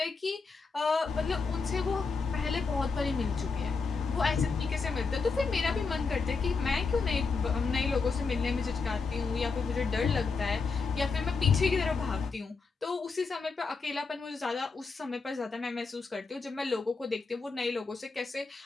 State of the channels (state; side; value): quieter; right; 4.6 dB